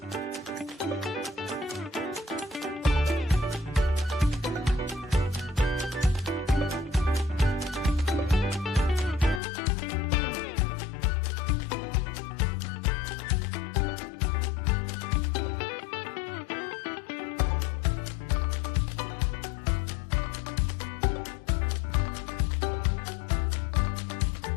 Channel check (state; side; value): drops out; right; at 9.4 s